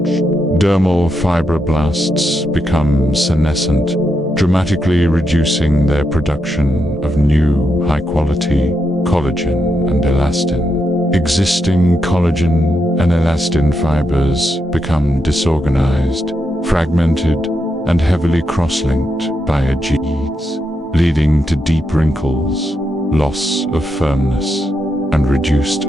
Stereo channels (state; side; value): normal; both; correlation 0.83